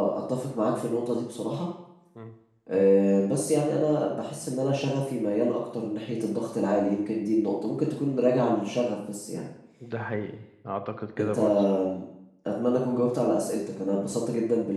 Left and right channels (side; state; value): both; identical; correlation 1.00